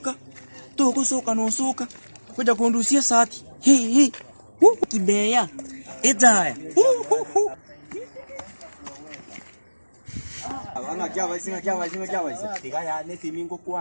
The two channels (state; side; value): inverted; both; correlation -1.00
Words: Togo soka no soka. Kuja kundusia sati. Hii. Kibeya. Edaya. Ana kya vai singa. Tiga ya nesi mingo